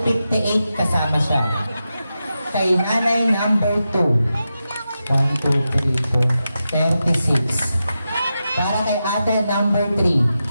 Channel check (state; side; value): inverted; both; correlation -0.90